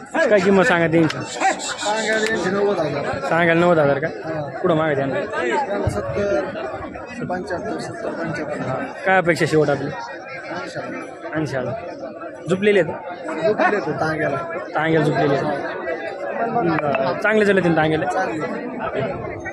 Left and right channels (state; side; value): identical; both; correlation 1.00